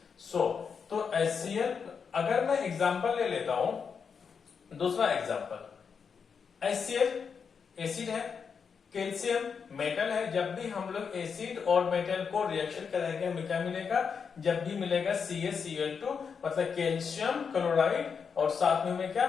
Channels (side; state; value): right; quieter; 6.2 dB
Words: तो HCl, अगर मैं एग्जांपल ले लेता हूं, दूसरा एग्जांपल, HCl एसिड है, कैल्शियम मेटल है, जब भी हम लोग एसिड और मेटल को रिएक्शन कराएंगे हमें क्या मिलेगा, जब भी मिलेगा CaCl2 मतलब कैल्शियम क्लोराइड, और साथ में हमें क्या